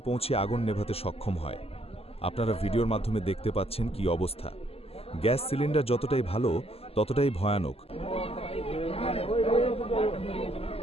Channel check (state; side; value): late; right; 0.29 ms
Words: পৌঁছে আগুন নেভাতে সক্ষম হয়। আপনারা ভিডিওর মাধ্যমে দেখতে পাচ্ছেন কি অবস্থা। গ্যাস সিলিন্ডার যতটাই ভালো ততটাই ভয়ানক।